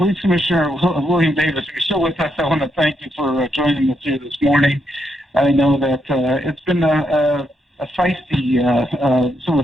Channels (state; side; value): normal; both; correlation 0.79